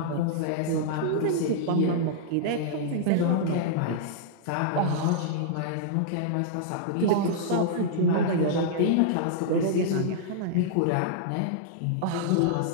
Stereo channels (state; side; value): different; both; correlation -0.02